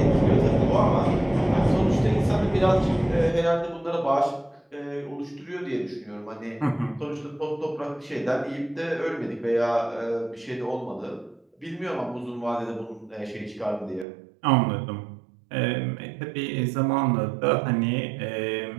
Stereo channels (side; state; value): left; drops out; at 14.1 s